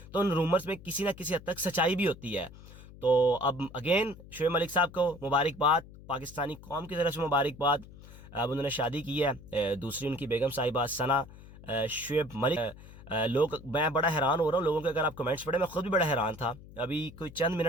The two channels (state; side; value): noise; left; hum, 18 dB below the sound